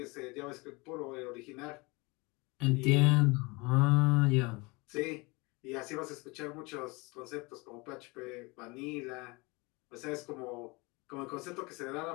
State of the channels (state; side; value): quieter; right; 26.2 dB